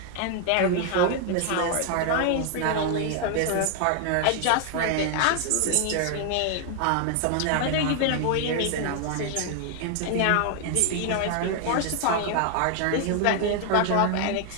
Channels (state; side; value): different; both; correlation 0.00